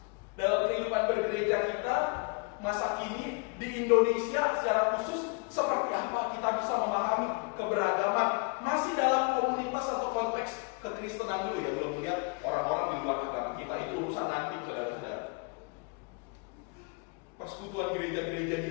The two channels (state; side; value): quieter; right; 32.7 dB